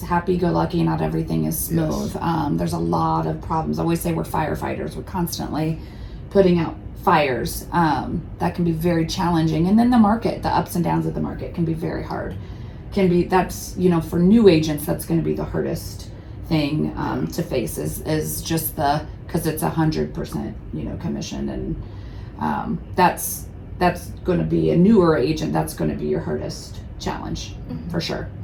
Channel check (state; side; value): identical; both; correlation 1.00